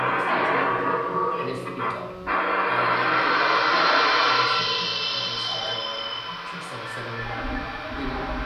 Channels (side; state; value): both; identical; correlation 1.00